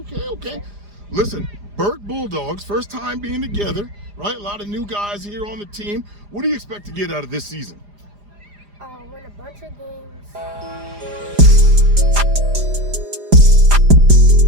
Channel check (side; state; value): left; late; 4.9 ms